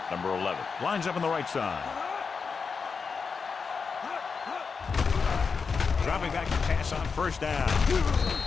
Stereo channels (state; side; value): quieter; right; 5.3 dB